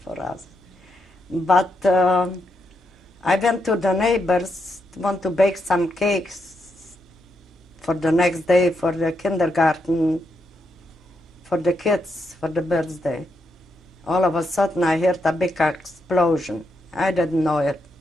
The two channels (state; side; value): noise; right; hum, 29 dB below the sound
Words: for us. But I went to the neighbors to want to bake some cakes for the next day for the kindergarten, for the kids, for the birthday. All of a sudden I heard a big explosion. I didn't know it